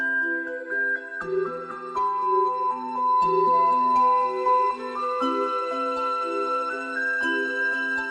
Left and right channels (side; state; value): both; identical; correlation 1.00